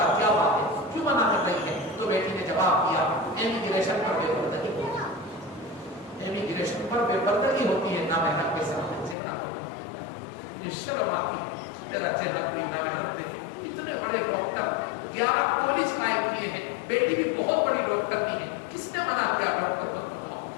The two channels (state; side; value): drops out; right; at 9.2 s